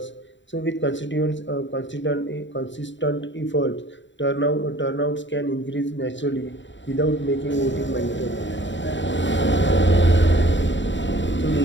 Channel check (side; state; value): right; late; 0.54 ms